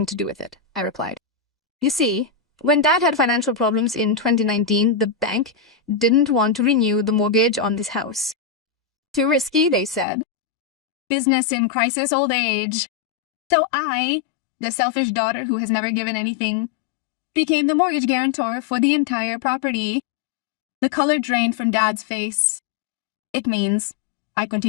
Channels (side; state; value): right; drops out; at 10.1 s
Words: to do with it, I replied. You see, when Dad had financial problems in 2019, the bank didn't want to renew the mortgage on this house. Too risky, they said. Business in crisis old age. So I, the selfish daughter who has never given anything, became the mortgage guarantor for the entire property. The color drained from Dad's face. It means, I